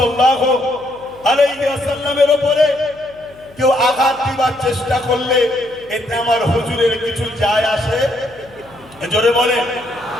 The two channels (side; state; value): left; noise; hum, 25 dB below the sound